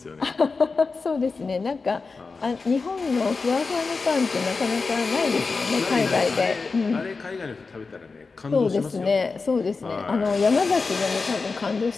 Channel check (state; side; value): quieter; right; 4.3 dB